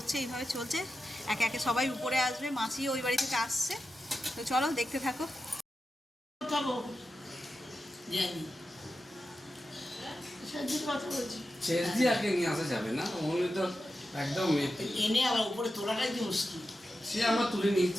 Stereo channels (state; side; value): normal; both; correlation 0.91